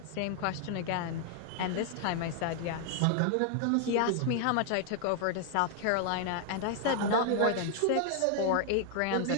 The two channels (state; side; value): different; both; correlation 0.00